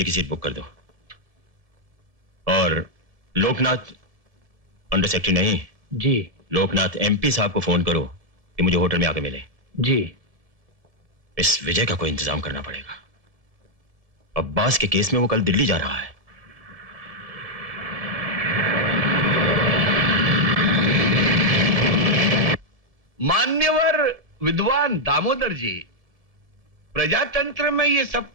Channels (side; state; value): left; late; 1.7 ms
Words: की सीट बुक कर दो। और लोकनाथ अंडर सेक्रेटरी नहीं जी, लोकनाथ एमपी साहब को फोन करो कि मुझे होटल में आके मिले। जी। इस विजय का कोई इंतजाम करना पड़ेगा। अब्बास के केस में वो कल दिल्ली जा रहा है। मान्यवर विद्वान दामोदर जी, प्रजातंत्र में ये सब